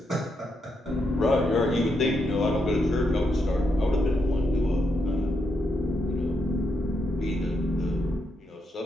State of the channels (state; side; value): normal; both; correlation 0.81